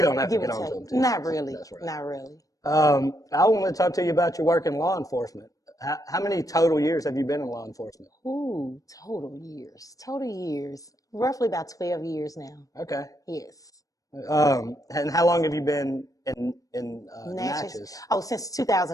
don't have to get on to him too. Not really. That's right. Not really. I want to talk to you about your work in law enforcement. How many total years have you been in law enforcement? Ooh, total years. Roughly about 12 years now. Okay. Yes. And how long have you been in Natchez? Oh, since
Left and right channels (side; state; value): right; late; 0.17 ms